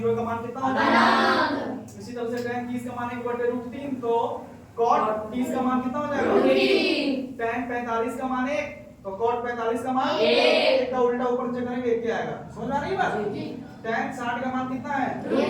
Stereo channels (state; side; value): identical; both; correlation 1.00